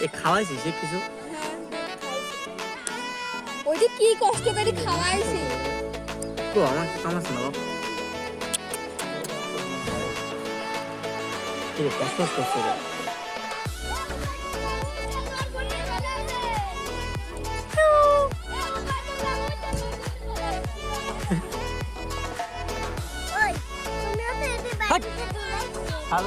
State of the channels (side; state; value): both; identical; correlation 1.00